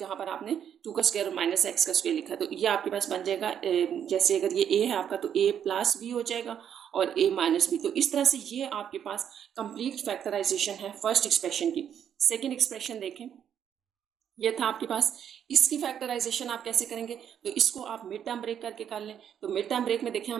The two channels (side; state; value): left; quieter; 9.0 dB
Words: पर आपने 2 का स्क्वायर और माइनस x का स्क्वायर लिखा है। तो ये आपके पास बन जाएगा, जैसे अगर ये a है आपका तो a प्लस बी हो जाएगा और a माइनस बी। तो इस तरह से ये आपके पास कंप्लीट फैक्टराइजेशन है फर्स्ट एक्सप्रेशन की। सेकेंड एक्सप्रेशन देखें, ये था आपके पास। इसकी फैक्टराइजेशन आप कैसे करेंगे, तो इसको आप मिड टर्म ब्रेक करके कर लें। तो मिड टर्म ब्रेक में देखें